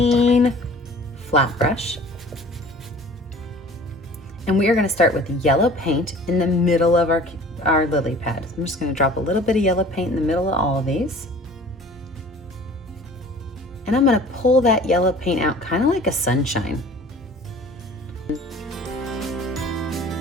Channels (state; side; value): normal; both; correlation 0.47